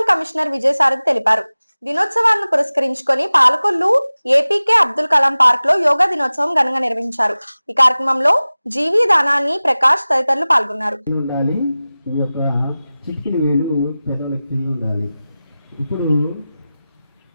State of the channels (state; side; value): inverted; both; correlation -0.97